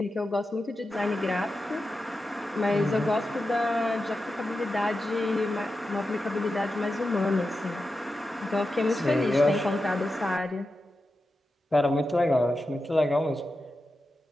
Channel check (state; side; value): normal; both; correlation 0.91